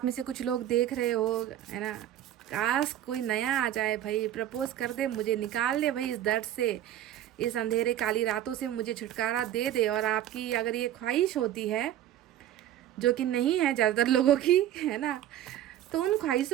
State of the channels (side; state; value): left; quieter; 11.9 dB